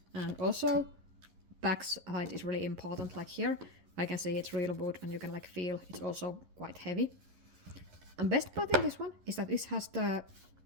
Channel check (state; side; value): late; left; 11 ms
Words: And also back's height is really important. Like here, I can see it's real wood and you can feel it's also quite heavy. And best part in this one is that this has the